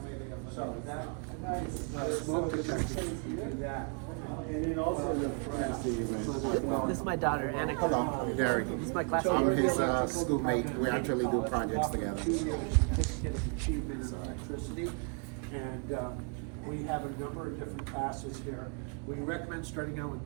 So that smoke detector, yeah. And then also This is my daughter, Annika. Hello, I'm Gary. This is my classmate. I'm his schoolmate. We actually do projects together. Certificate of achievement in electricity, and we have a number of different classes here. We recommend starting out with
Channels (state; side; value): quieter; left; 38.7 dB